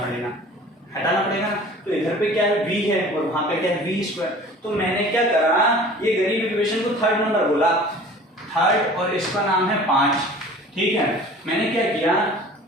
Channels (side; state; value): both; normal; correlation 0.45